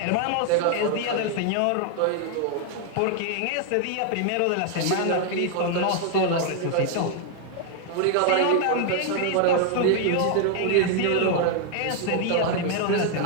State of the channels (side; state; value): both; different; correlation 0.00